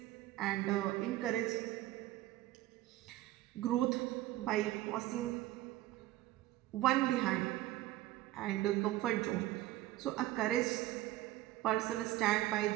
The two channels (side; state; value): left; quieter; 15.8 dB